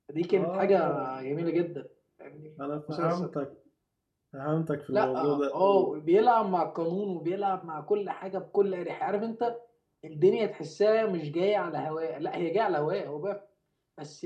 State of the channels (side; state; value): both; identical; correlation 1.00